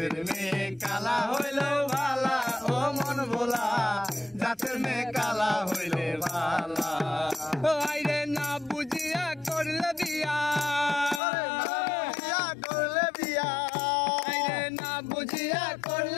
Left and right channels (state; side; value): drops out; right; at 11.2 s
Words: মেয়ে কালা হইলে ভালা ও মন ভোলা জাতের মেয়ে কালা হইলে ভালা আইরে না বুঝিয়া করলে বিয়া করলে বিয়া আইরে না বুঝিয়া